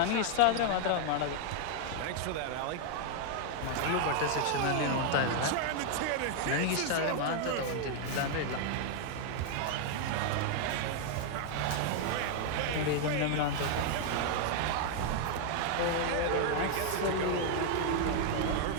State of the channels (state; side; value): different; both; correlation 0.00